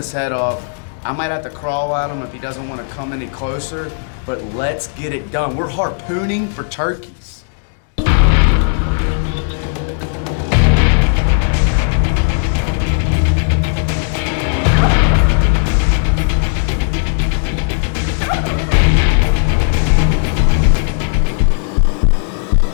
head off. I might have to crawl at him if he doesn't want to come any closer, but let's get it done. We're harpooning for turkeys.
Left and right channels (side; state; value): right; silent; digital silence